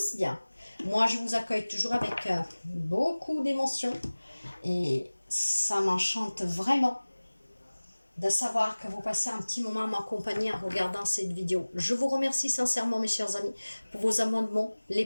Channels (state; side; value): inverted; both; correlation -1.00